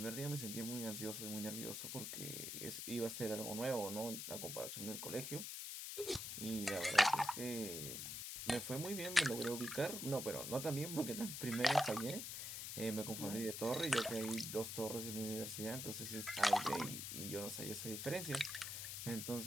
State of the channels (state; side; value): noise; left; hiss, 5 dB below the sound